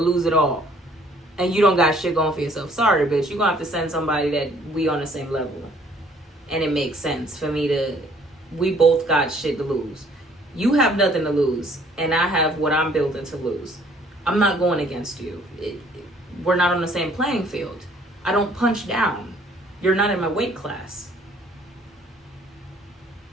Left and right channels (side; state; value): both; normal; correlation 0.60